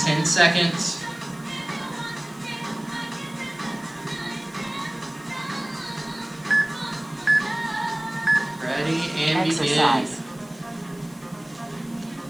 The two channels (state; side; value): noise; left; hiss, 26 dB below the sound